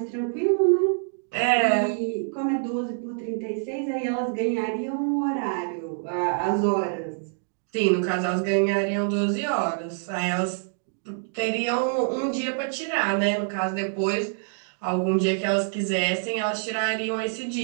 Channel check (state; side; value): silent; left; digital silence